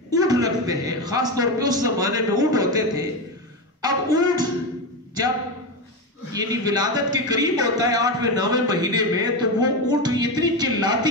اونٹ رکھتے ہیں. خاص طور پہ اس زمانے میں اونٹ ہوتے تھے. اب اونٹ جب یعنی ولادت کے قریب ہوتا ہے 8ویں 9ویں مہینے میں, تو وہ اونٹ اتنی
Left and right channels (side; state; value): both; normal; correlation 0.16